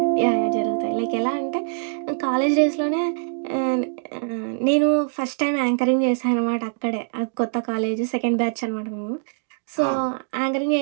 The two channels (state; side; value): silent; left; digital silence